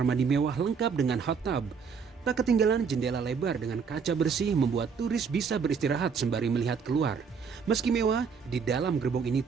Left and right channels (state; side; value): quieter; left; 5.9 dB